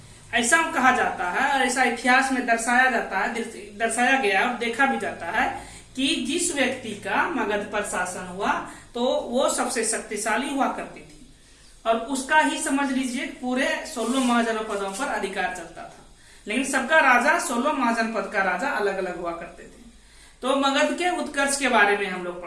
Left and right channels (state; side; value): identical; both; correlation 1.00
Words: ऐसा कहा जाता है और ऐसा इतिहास में दर्शाया गया और देखा भी जाता है कि जिस व्यक्ति का मगध पर शासन हुआ तो वो सबसे शक्तिशाली हुआ करती थी और उसका ही समझ लीजिए पूरे 16 महाजनपदों पर अधिकार चलता था। लेकिन सबका राजा 16 महाजनपद का राजा अलग अलग हुआ करते थे। तो मगध के उत्कर्ष के बारे में हम लोग